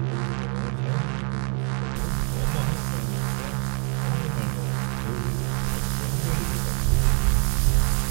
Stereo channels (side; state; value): left; quieter; 38.6 dB